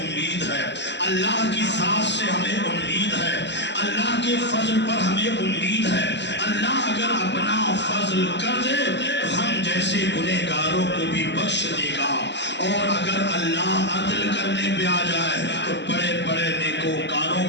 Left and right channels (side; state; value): right; late; 0.51 ms